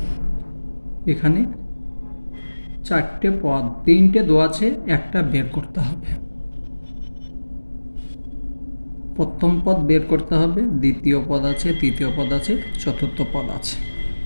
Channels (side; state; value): both; inverted; correlation -1.00